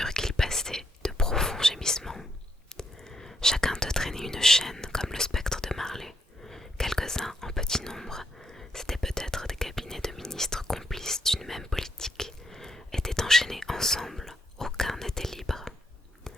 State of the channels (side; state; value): both; normal; correlation 0.76